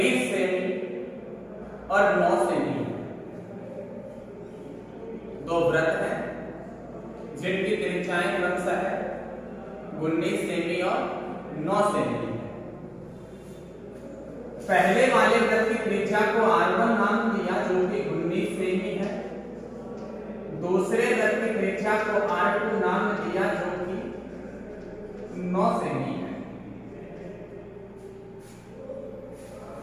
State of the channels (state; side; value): identical; both; correlation 1.00